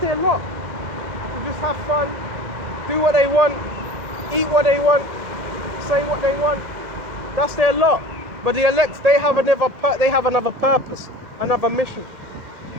lot. They just have fun, do what they want, eat what they want, say what they want. That's their lot. But the elect, they have another purpose, another mission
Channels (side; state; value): left; late; 2.1 ms